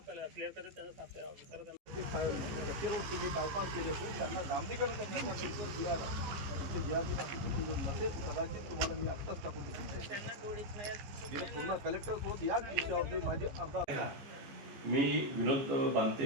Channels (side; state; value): left; late; 15 ms